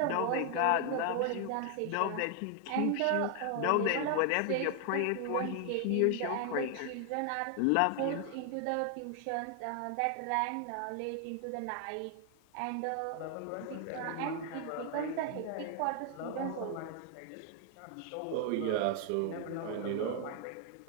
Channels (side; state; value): both; different; correlation 0.00